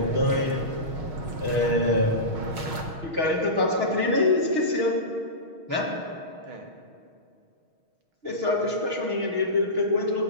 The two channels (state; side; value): late; left; 6.4 ms